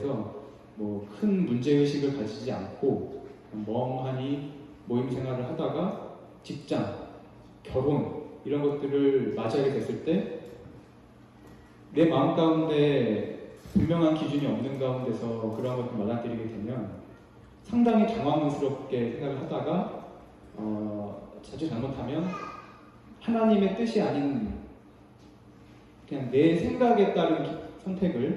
큰 문제의식을 가지지 않고 멍하니 모임 생활을 하다가 직장, 결혼 이런 것들을 맞이하게 됐을 때 내 마음 가운데 분명한 기준이 없는 가운데서 그런 것을 맞아들이게 되면 상당히 당황스럽게 생각을 하다가 자주 잘못하면 하나님의 뜻이 아닌 그냥 내 생각에 따른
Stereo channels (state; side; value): identical; both; correlation 1.00